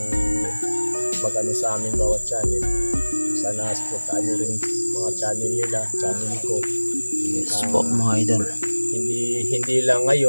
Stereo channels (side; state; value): both; inverted; correlation -1.00